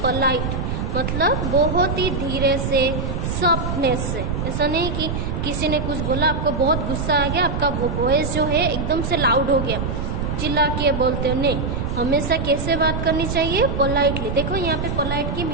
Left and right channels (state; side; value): noise; right; rumble, 2 dB below the sound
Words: पोलाइट, मतलब बहुत ही धीरे से, सॉफ्टनेस से। ऐसा नहीं कि किसी ने कुछ बोला, आपको बहुत गुस्सा आ गया, आपका वो वॉइस जो है एकदम से लाउड हो गया, चिल्ला के बोलते हो, नहीं। हमेशा कैसे बात करनी चाहिए? पोलाइटली। देखो यहाँ पे पोलाइट की